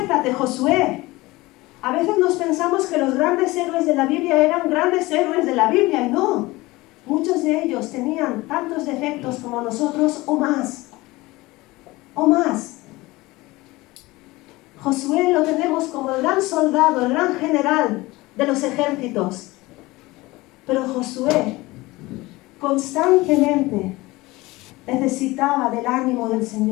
Josué. A veces nos pensamos que los grandes héroes de la Biblia eran grandes héroes de la Biblia, y no. Muchos de ellos tenían tantos defectos como nosotros o más. O más. Josué lo tenemos como el gran soldado, el gran general de los ejércitos. Pero Josué constantemente necesitaba del ánimo del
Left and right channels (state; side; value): quieter; right; 20.6 dB